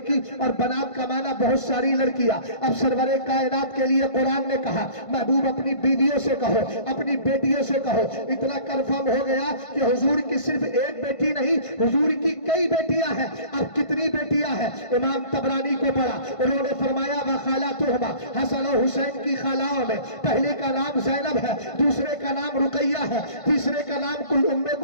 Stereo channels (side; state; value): right; late; 1.5 ms